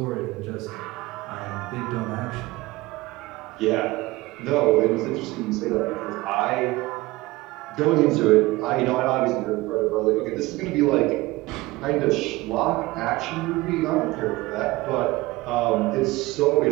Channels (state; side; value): quieter; left; 20.2 dB